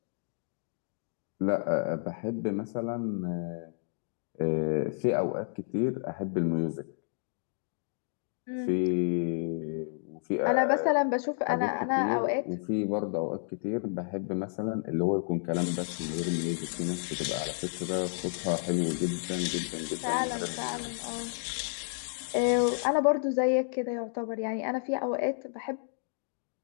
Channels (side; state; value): right; silent; digital silence